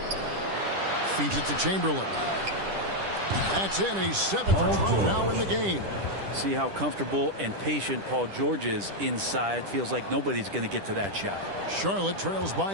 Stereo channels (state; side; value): late; left; 10 ms